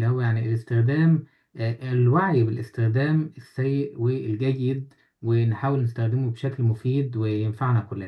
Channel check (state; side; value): identical; both; correlation 1.00